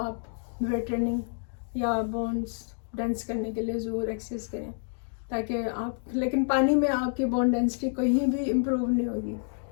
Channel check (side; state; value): right; silent; 59 dB below the other